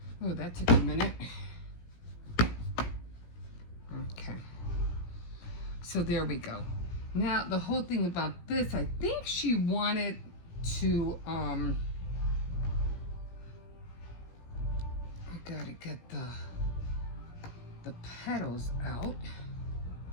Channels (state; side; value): late; right; 17 ms